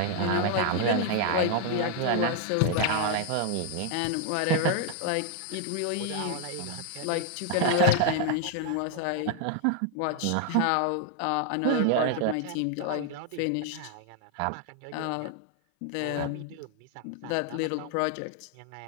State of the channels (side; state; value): both; different; correlation 0.00